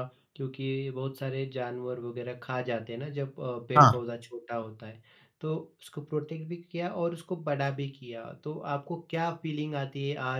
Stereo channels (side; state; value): both; identical; correlation 1.00